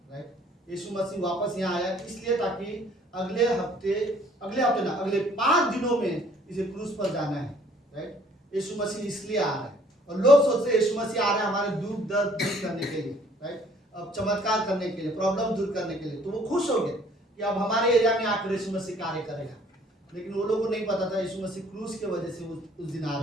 राइट। यीशु मसीह वापस यहाँ आया इसलिए ताकि अगले 5 दिनों में इसे क्रूस पर जाना है, राइट। यीशु मसीह इसलिए आ रहा है, और लोग सोचते हैं यीशु मसीह आ रहा है हमारे दुख दर्द दूर करने के लिए, राइट, अब चमत्कार करने के लिए, प्रॉब्लम दूर करने के लिए। तो वो खुश हो गए कि अब हमारे एरिया में आकर यीशु मसीह कार्य करेगा, लेकिन वो लोगों को नहीं पता था यीशु मसीह क्रूस की वजह से उस दिन आ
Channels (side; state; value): both; normal; correlation 0.58